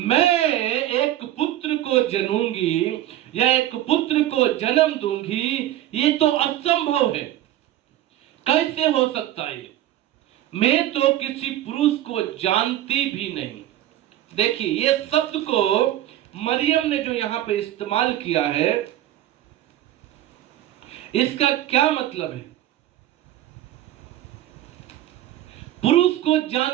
एक पुत्र को जनूंगी या एक पुत्र को जन्म दूंगी, ये तो असंभव है। कैसे हो सकता है? मैं तो किसी पुरुष को जानती भी नहीं। देखिए, ये शब्द को मरियम ने जो यहां पे इस्तेमाल किया है, इसका क्या मतलब है? पुरुष को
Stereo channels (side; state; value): left; quieter; 13.5 dB